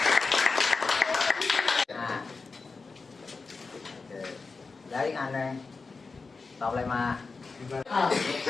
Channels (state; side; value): quieter; right; 4.3 dB